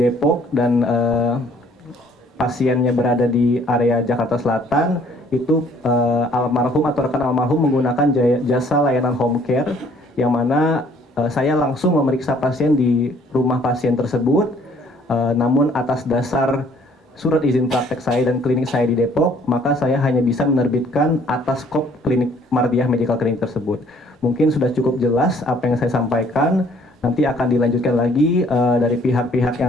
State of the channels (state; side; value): normal; both; correlation 0.60